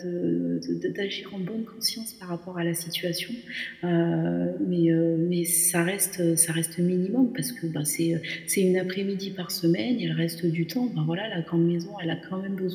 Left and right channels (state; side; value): identical; both; correlation 1.00